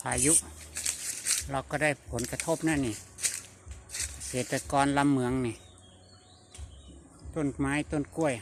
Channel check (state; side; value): identical; both; correlation 1.00